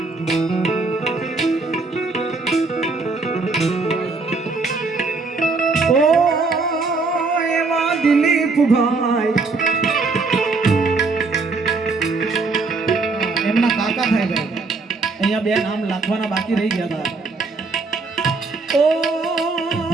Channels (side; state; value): left; quieter; 3.9 dB